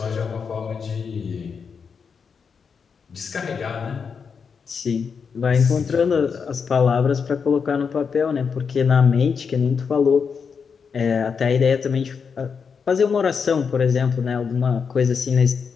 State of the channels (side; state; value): right; quieter; 6.0 dB